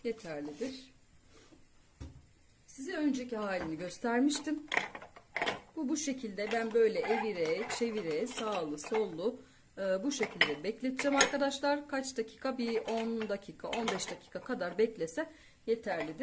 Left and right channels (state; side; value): identical; both; correlation 1.00